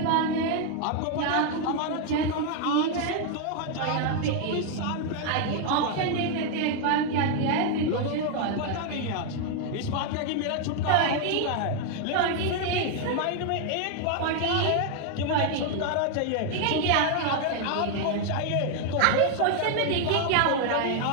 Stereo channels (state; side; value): different; both; correlation 0.00